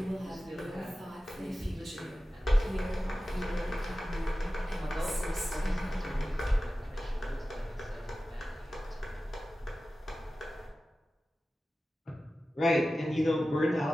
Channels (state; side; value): normal; both; correlation 0.95